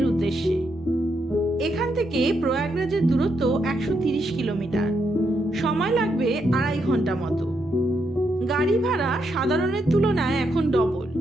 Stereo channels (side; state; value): both; normal; correlation 0.80